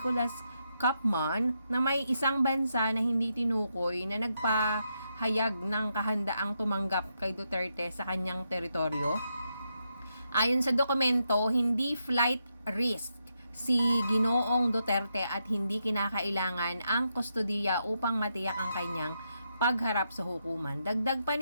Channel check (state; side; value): inverted; both; correlation -0.82